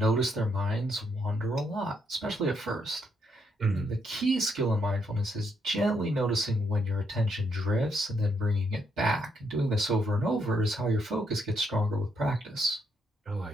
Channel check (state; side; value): normal; both; correlation 0.75